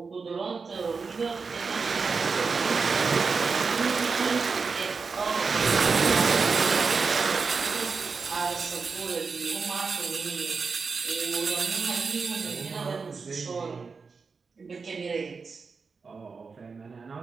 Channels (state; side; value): quieter; left; 4.9 dB